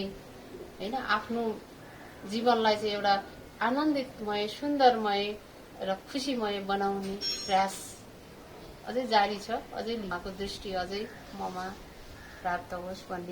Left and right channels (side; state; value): both; identical; correlation 1.00